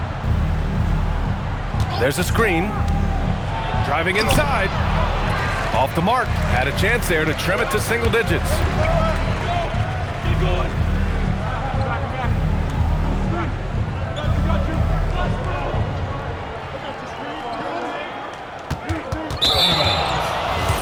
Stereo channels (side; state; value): both; identical; correlation 1.00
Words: There's a screen. Driving inside. Off the mark. Had a chance there to trim it to single digits.